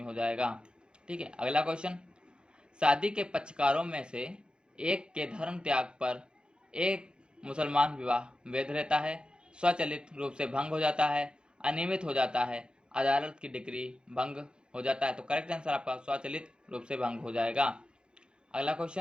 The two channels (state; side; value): late; left; 0.050 ms